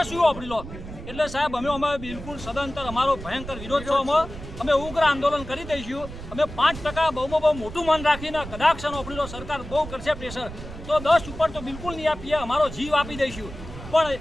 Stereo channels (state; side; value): noise; right; rumble, 12 dB below the sound